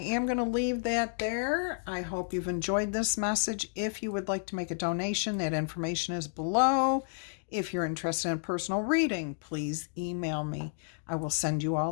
going to leave that there. I hope you've enjoyed this message. If you would like to make a donation, that information is below. If you're interested in a personal reading, please email me. I will send you all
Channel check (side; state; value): right; silent; digital silence